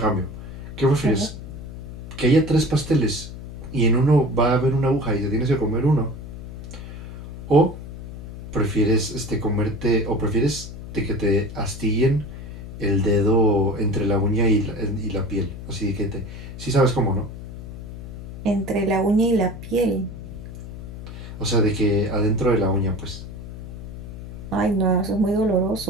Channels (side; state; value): left; noise; hum, 11 dB below the sound